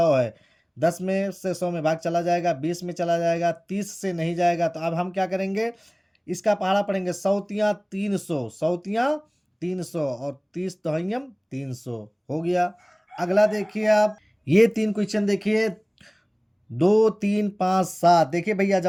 है। 10 में से 100 में भाग चला जाएगा, 20 में चला जाएगा, 30 से नहीं जाएगा। तो अब हम क्या करेंगे? इसका पहाड़ा पढ़ेंगे, 100 तियाँ 300, 100 तियाँ 300 और 30 दहइयम 300 हो गया। अगला देखिए आप, ये 3 क्वेश्चन देखिए, 2, 3, 5, 7। देखिए भैया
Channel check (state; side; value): identical; both; correlation 1.00